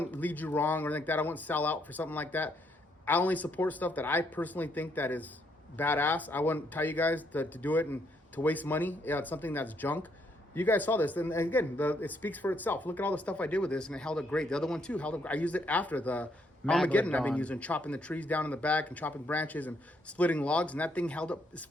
lead you wrong or anything like that. I wouldn't sell out for something like that. I only support stuff that I personally think that is badass. I wouldn't tell you guys to do it and to waste money. Yeah, it's something that's junk. You guys saw this, and again, it speaks for itself. Look at all the stuff I did with this, and it held up great. The other one too held up. I used it after the Armageddon. I've been using, chopping the trees down in the back and chopping branches and splitting logs, and that thing held up. It's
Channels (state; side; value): normal; both; correlation 0.73